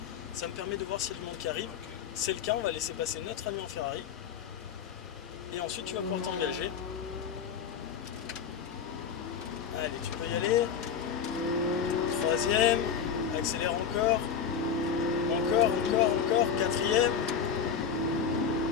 Ça me permet de voir s'il y a du monde qui arrive. C'est le cas, on va laisser passer notre ami en Ferrari. Et ensuite tu vas pouvoir t'engager. Allez, tu peux y aller. Troisième, accélère encore. Encore. Quatrième.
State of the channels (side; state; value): right; quieter; 7.2 dB